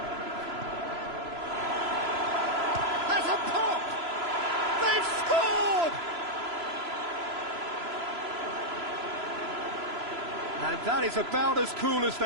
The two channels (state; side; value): late; left; 3.0 ms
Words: Has a pop! They've scored! And that is about as cool as